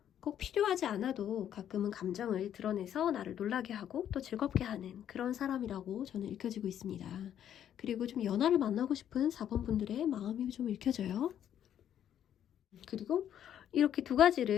꼭 필요하지 않아도 가끔은 감정을 드러내서 나를 놀라게 하고 또 즐겁게 하는 그런 사람이라고 저는 읽혀지고 있습니다. 그리고 좀 연하를 만나고 싶은 4번 분들의 마음이 좀 읽혀져요. 그리고 이렇게 두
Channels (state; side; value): quieter; right; 10.1 dB